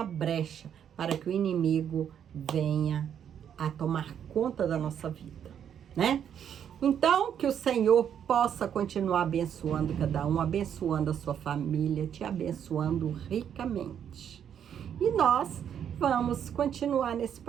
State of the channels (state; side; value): quieter; left; 8.9 dB